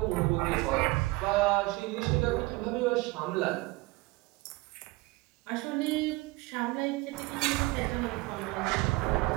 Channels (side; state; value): left; quieter; 22.2 dB